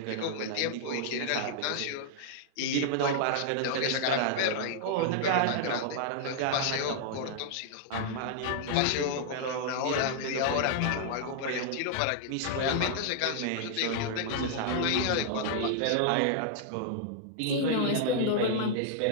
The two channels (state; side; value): different; both; correlation -0.01